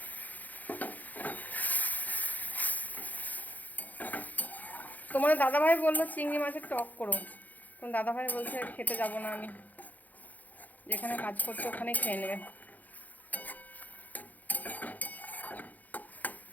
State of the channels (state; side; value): late; right; 0.081 ms